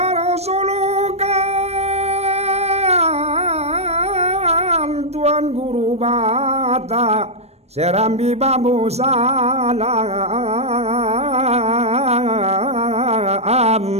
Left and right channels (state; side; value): late; left; 0.31 ms